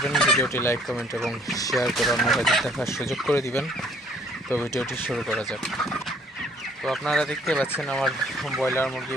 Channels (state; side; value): normal; both; correlation 0.60